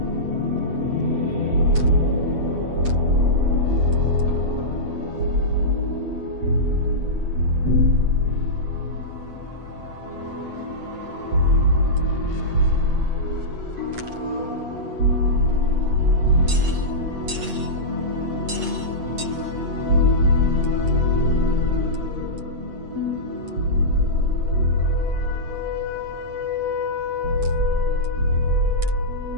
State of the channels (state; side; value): late; left; 8.2 ms